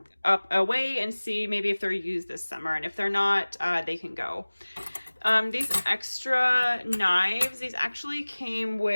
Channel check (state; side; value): inverted; both; correlation -1.00